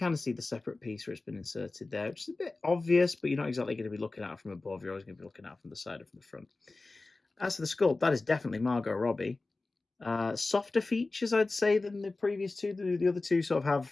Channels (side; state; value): right; quieter; 3.4 dB